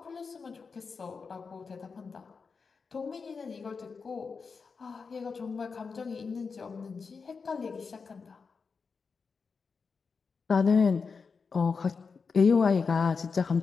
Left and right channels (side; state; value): right; quieter; 5.1 dB